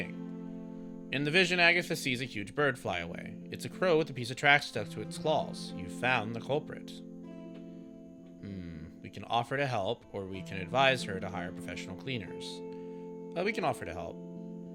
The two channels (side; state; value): both; identical; correlation 1.00